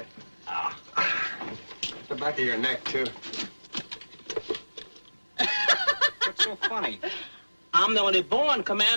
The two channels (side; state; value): both; inverted; correlation -1.00